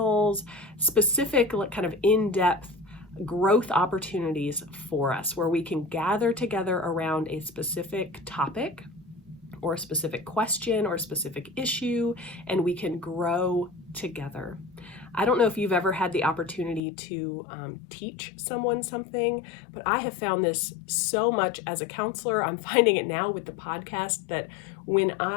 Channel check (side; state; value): right; drops out; at 16.8 s